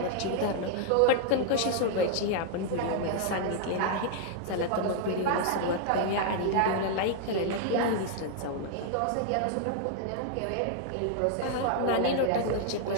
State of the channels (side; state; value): both; different; correlation 0.00